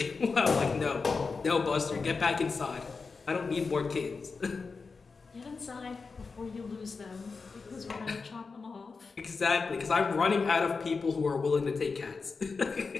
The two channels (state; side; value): quieter; right; 4.6 dB